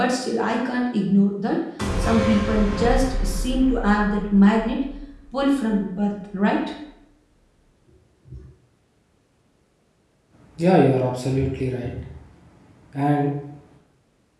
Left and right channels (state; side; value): identical; both; correlation 1.00